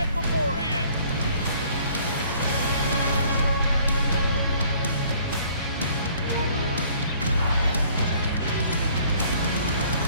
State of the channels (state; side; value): inverted; both; correlation -0.58